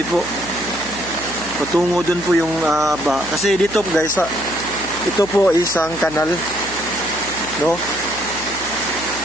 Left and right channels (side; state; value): right; noise; hum, 16 dB below the sound